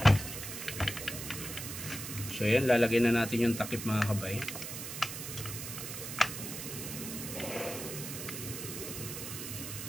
So yan, lalagay na natin yung takip mga kabay.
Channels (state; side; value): noise; right; hiss, 7 dB below the sound